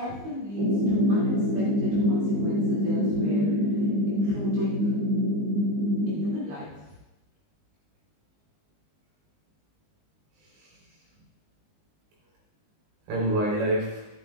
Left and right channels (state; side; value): late; left; 20 ms